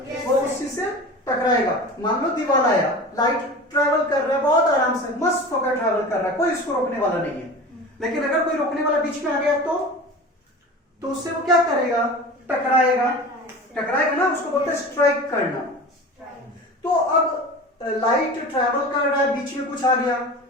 वो उस चीज से टकराएगा। मान लो दीवार आया, लाइट ट्रेवल कर रहा है बहुत आराम से, मस्त होकर ट्रेवल कर रहा है, कोई इसको रोकने वाला नहीं है। लेकिन अगर कोई रोकने वाला बीच में आ गया तो उससे वो क्या करेगा? टकराएगा, टकराएगा ना, उसको बोलते हैं स्ट्राइक करना। तो अब लाइट ट्रैवल कर रहा है, बीच में कुछ आ गया,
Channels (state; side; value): normal; both; correlation 0.35